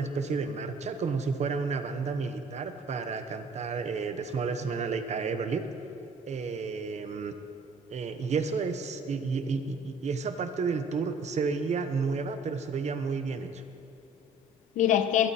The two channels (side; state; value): both; normal; correlation 0.51